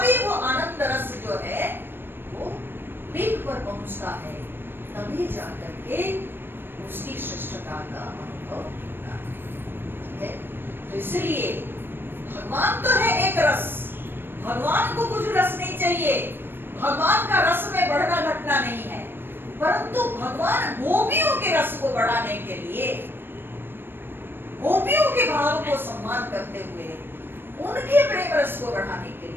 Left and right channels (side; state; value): left; late; 0.099 ms